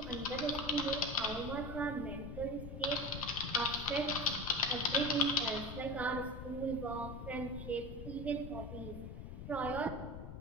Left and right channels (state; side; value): noise; left; rumble, 9 dB below the sound